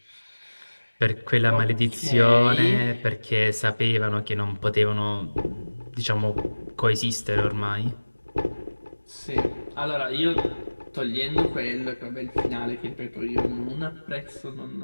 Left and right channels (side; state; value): both; inverted; correlation -1.00